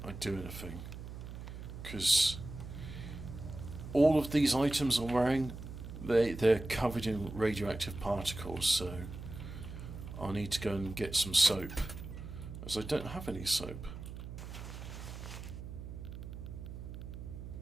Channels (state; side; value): noise; right; hum, 10 dB below the sound